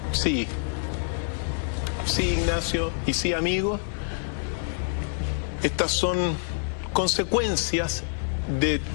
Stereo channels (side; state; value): right; silent; 57 dB below the other